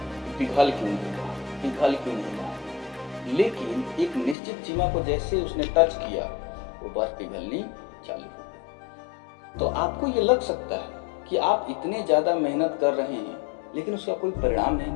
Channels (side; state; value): right; drops out; at 4.4 s